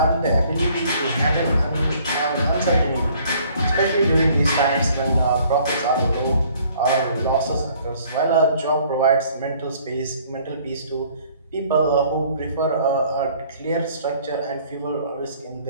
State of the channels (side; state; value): both; inverted; correlation -0.58